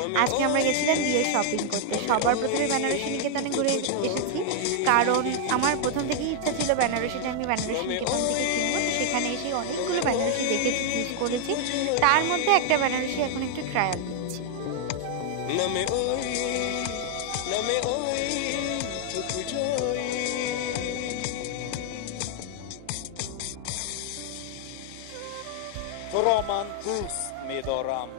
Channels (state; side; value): different; both; correlation 0.00